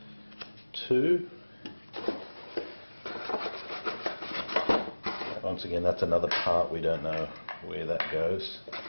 2. Once again, that's another part, we don't know where that goes.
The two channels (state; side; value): inverted; both; correlation -1.00